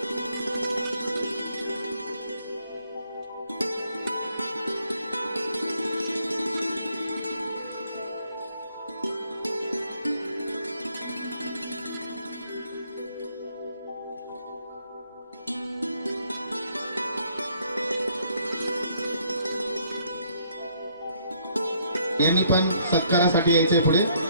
यांनी पण सत्कारासाठी यायचे पुढे.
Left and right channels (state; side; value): inverted; both; correlation -0.67